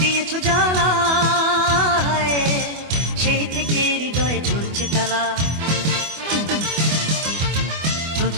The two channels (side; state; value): left; late; 24 ms